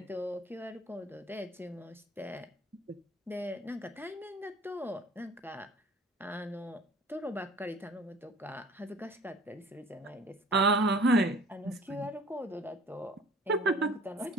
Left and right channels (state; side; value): normal; both; correlation 0.49